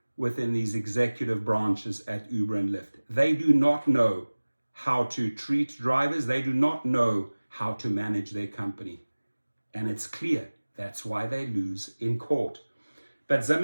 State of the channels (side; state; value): both; inverted; correlation -1.00